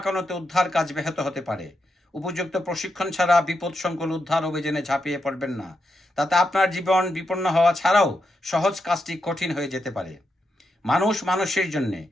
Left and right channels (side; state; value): both; normal; correlation 0.84